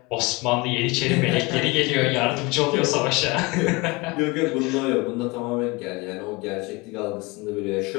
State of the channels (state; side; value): quieter; right; 24.8 dB